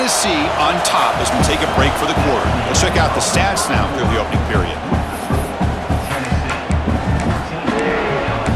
on top as we take a break for the quarter. Let's check out the stats now through the opening period.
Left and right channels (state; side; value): identical; both; correlation 1.00